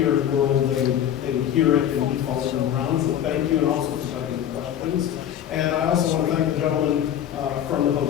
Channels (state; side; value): quieter; right; 10.3 dB